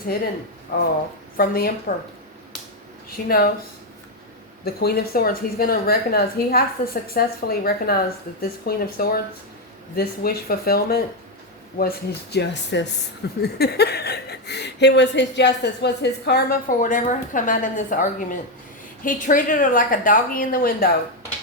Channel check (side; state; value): both; normal; correlation 0.05